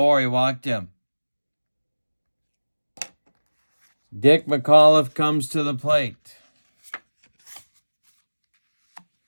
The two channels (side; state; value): both; inverted; correlation -1.00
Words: He walked him. Dick McAuliffe comes to the plate.